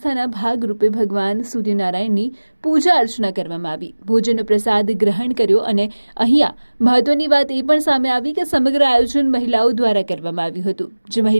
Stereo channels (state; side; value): inverted; both; correlation -1.00